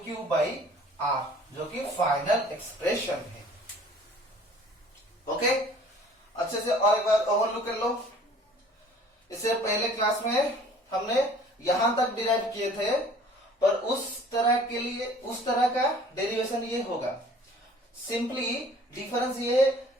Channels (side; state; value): both; normal; correlation 0.52